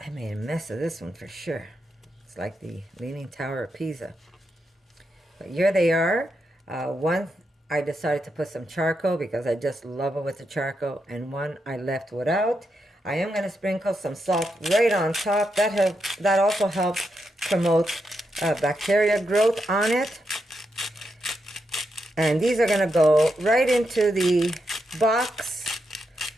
made a mess of this one for sure. It's like the Leaning Tower of Pisa. But here they are. One, I decided to put some charcoal because I just love it with the charcoal, and one I left without. I am going to sprinkle some salt right on top. That also helps promote bacteria growth on it. And these are going to go right into the box.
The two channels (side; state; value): both; normal; correlation 0.84